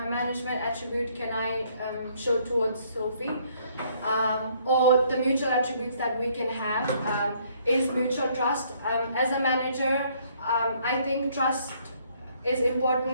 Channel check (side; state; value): both; inverted; correlation -0.65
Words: attribute can I show towards Sophie? Or the mutual attributes that we can have is mutual trust. As a manager, I think trust is